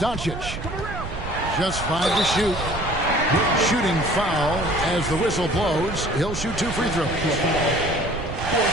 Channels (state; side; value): noise; right; rumble, 8 dB below the sound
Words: Just 5 to shoot. Shooting foul as the whistle blows. He'll shoot 2 free throws. A